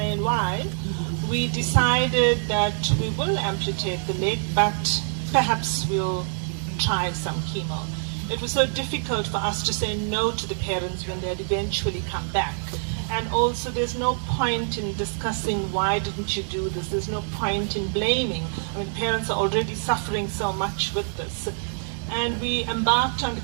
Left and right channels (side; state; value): left; silent; 60 dB below the other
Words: why, we decided that we will amputate the leg, but perhaps we'll try some chemo. It was so difficult for us to say no to the parents when they'd eventually come back. And also, there's no point in discussing why didn't you do this. There's no point in blaming. I mean, parents are already suffering so much with this. And we embarked on the